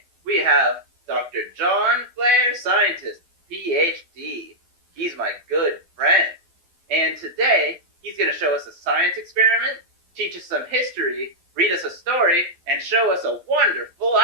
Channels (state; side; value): late; left; 12 ms